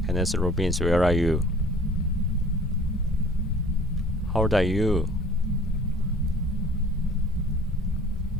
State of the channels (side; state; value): both; normal; correlation 0.49